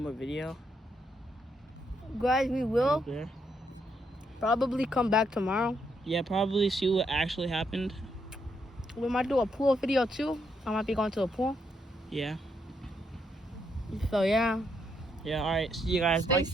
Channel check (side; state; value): both; normal; correlation 0.77